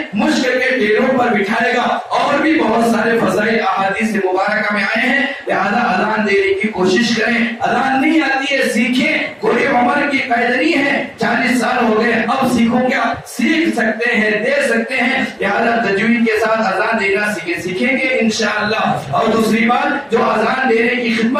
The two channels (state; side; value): identical; both; correlation 1.00